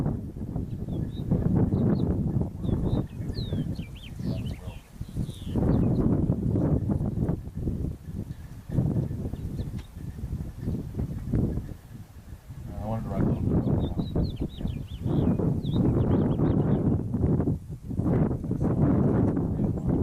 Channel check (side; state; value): both; identical; correlation 1.00